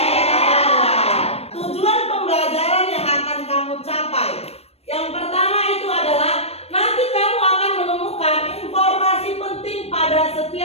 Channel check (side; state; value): right; late; 0.30 ms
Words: Tujuan pembelajaran yang akan kamu capai, yang pertama itu adalah nanti kamu akan menemukan informasi penting pada